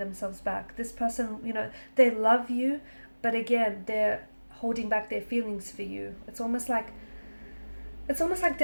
back. This person, they love you, but again, they're holding back their feelings for you. It's almost like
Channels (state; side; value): inverted; both; correlation -1.00